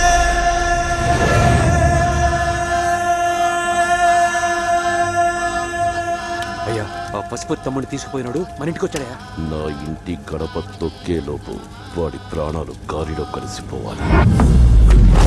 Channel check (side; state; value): both; identical; correlation 1.00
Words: పశుపతి తమ్ముడిని తీసుకుపోయినాడు, మన ఇంటికి వచ్చాడా? నా ఇంటి గడప తొక్కే లోపు వాడి ప్రాణాలు గాలిలో కలిసిపోవాలి.